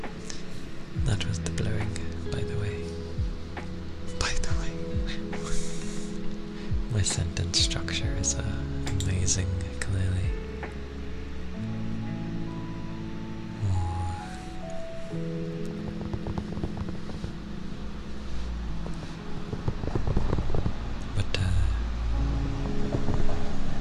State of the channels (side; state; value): both; identical; correlation 1.00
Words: that was the blowing, by the way. My sentence structure is amazing, clearly.